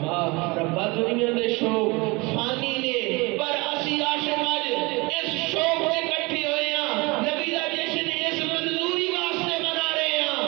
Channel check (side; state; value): left; quieter; 25.6 dB